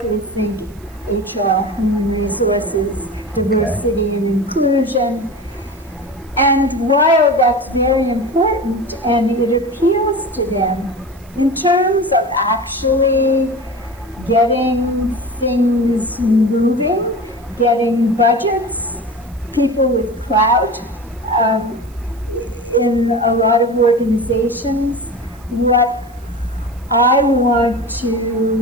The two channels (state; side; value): noise; right; hiss, 28 dB below the sound